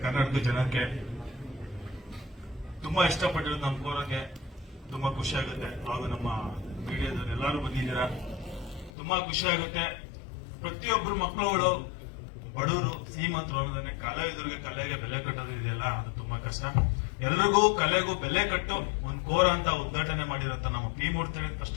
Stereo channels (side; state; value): right; drops out; at 8.9 s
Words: ಕನ್ನಡದ ಜನಕ್ಕೆ ತುಂಬಾ ಇಷ್ಟಪಟ್ಟಿರೋದು ನಮ್ಮ ಕೋರಕ್ಕೆ ತುಂಬಾ ಖುಷಿ ಆಗುತ್ತೆ. ಹಾಗೂ ನಮ್ಮ ಮೀಡಿಯಾದವ್ರು ಎಲ್ಲರೂ ಬಂದಿದ್ದೀರಾ, ತುಂಬಾ ಖುಷಿ ಆಗುತ್ತೆ. ಪ್ರತಿಯೊಬ್ರು ಮಕ್ಕಳುಗಳು ಬಡವರು ಶ್ರೀಮಂತರು ಅನ್ನೋದನ್ನೇ ಕಲಾವಿದರಿಗೆ ಕಲೆಗೆ ಬೆಲೆ ಕಟ್ಟೋದು ಇದೆಯಲ್ಲ, ಅದು ತುಂಬಾ ಕಷ್ಟ. ಎಲ್ರಿಗೂ ಕಲೆಗೂ ಬೆಲೆ ಕಟ್ಟು ಒಂದು ಕೋರ ಅಂತ ಉದ್ಘಾಟನೆ ಮಾಡಿರೋಂತ ನಮ್ಮ ಪಿ ಮೂರ್ತಿ